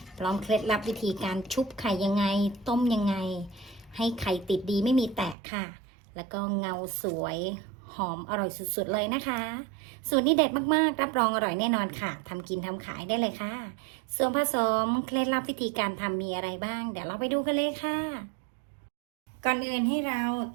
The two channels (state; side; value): drops out; left; at 5.4 s